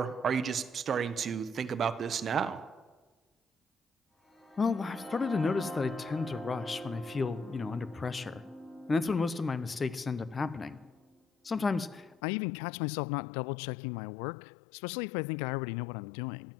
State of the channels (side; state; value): right; drops out; at 12.2 s